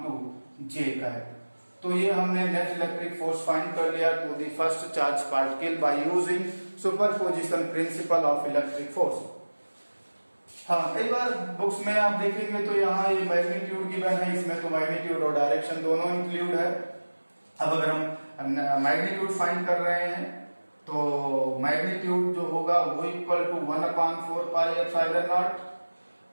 J का है। तो ये हमने नेट इलेक्ट्रिक फोर्स फाइंड कर लिया to the first charge particle by using superposition principle of electric force. हाँ, कई बार बुक्स में आप देखेंगे तो यहाँ ये मैग्नीट्यूड गिवन है, इसमें तो मैग्नीट्यूड और डायरेक्शन दोनों इंक्लूड है। अब अगर हम मैग्नीट्यूड फाइंड कर रहे हैं तो मैग्नीट्यूड जो होगा वो equal to 1/4 pi epsilon naught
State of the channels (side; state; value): both; inverted; correlation -1.00